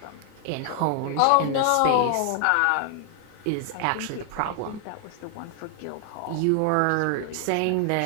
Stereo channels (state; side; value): different; both; correlation 0.00